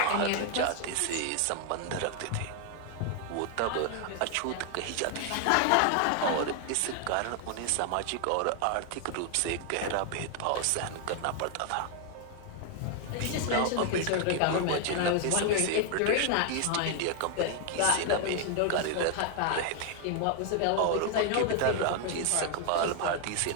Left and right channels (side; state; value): both; different; correlation 0.00